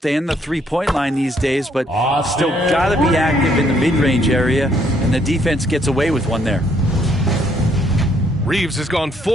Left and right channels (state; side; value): normal; both; correlation 0.68